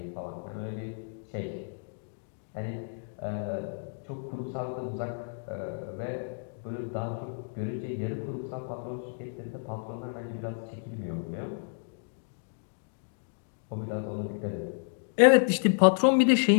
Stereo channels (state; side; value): silent; right; digital silence